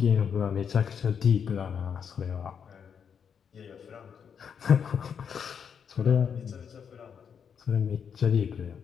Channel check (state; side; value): quieter; right; 7.2 dB